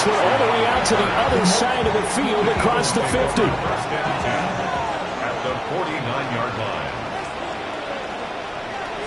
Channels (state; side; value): identical; both; correlation 1.00